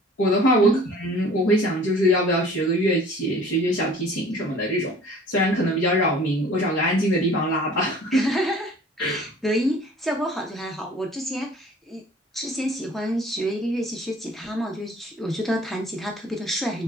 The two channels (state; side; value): normal; both; correlation 0.49